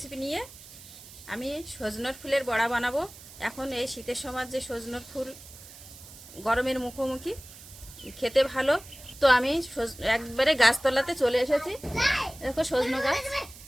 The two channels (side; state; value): right; noise; hiss, 18 dB below the sound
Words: নিয়ে। আমি সজনের ফুলের বড়া বানাবো। এখন এই শীতের সময় যে সজনের ফুল গরমের মুখোমুখি, খেতে ভালো। তো আমি একবারে গাছতলাতে চলে এসেছি। দেখো সজনে গাছ,